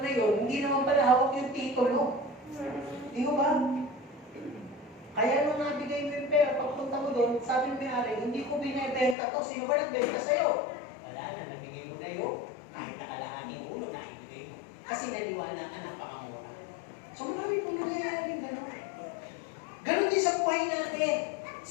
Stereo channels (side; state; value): right; drops out; at 9.2 s